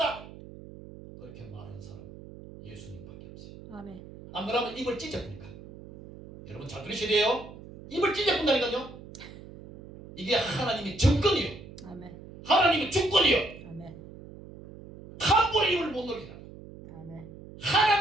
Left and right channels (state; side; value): noise; right; hum, 16 dB below the sound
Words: 그렇게 말하는 사람 예수님밖에 없어요. 아멘. 안 그러면 입을 찢어보니까. 여러분 잘 들으셔야 돼요. 입을 찢어본다니까요. 이게 하나님의 정권이요. 아멘. 하나님의 주권이요. 아멘. 함부로 입을 못 놀리라. 아멘.